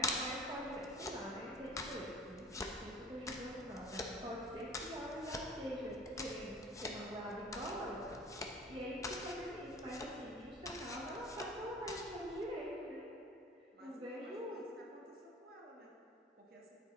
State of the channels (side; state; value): both; normal; correlation 0.43